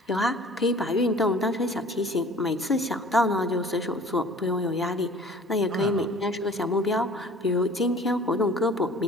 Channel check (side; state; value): both; normal; correlation 0.48